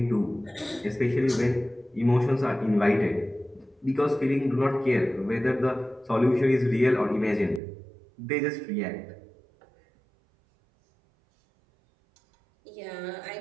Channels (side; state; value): left; drops out; at 7.6 s